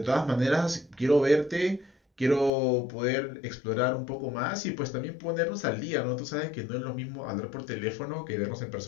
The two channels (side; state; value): right; drops out; at 2.5 s